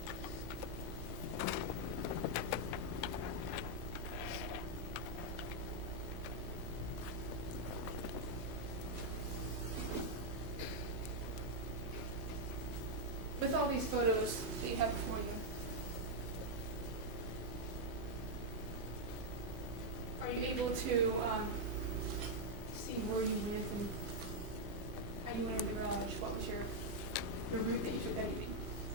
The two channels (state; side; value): late; left; 5.4 ms